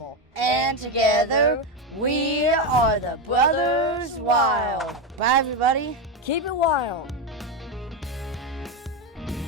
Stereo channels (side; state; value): both; normal; correlation 0.12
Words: And together, we are the Brothers Wild. Bye, everybody. Keep it wild.